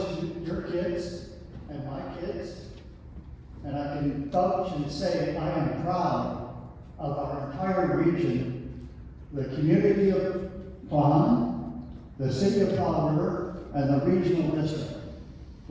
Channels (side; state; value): both; identical; correlation 1.00